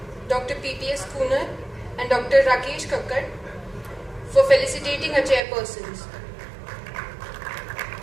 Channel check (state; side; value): drops out; left; at 5.4 s